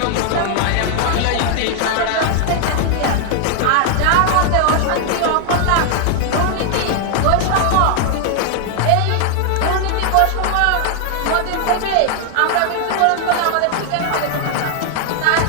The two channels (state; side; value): different; both; correlation 0.00